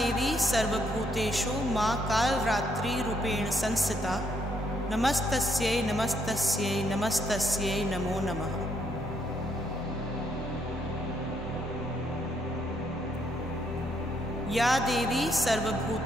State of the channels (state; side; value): normal; both; correlation 0.73